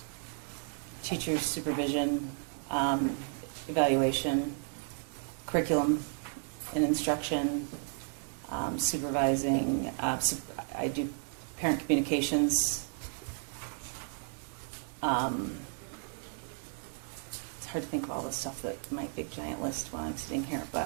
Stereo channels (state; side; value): silent; left; 55 dB below the other